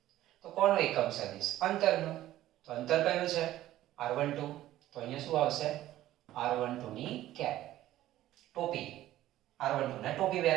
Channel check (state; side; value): quieter; left; 14.2 dB